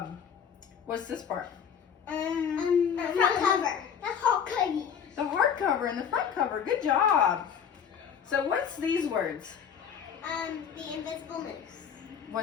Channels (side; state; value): right; quieter; 7.7 dB